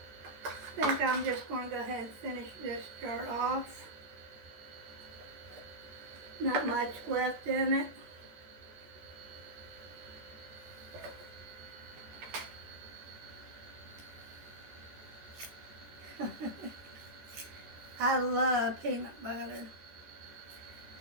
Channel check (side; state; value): left; late; 14 ms